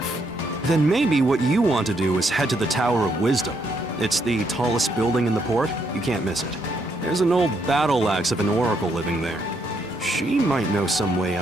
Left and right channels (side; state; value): both; normal; correlation 0.75